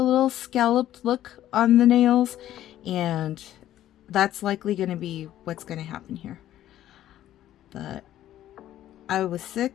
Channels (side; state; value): right; quieter; 12.7 dB